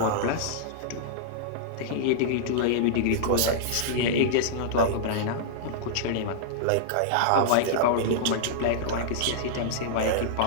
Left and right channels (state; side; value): different; both; correlation -0.02